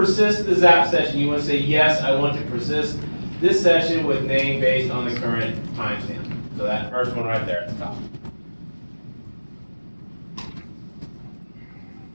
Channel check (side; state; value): both; inverted; correlation -1.00